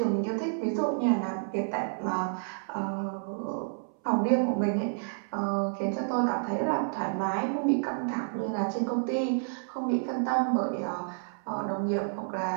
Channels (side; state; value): left; silent; 58 dB below the other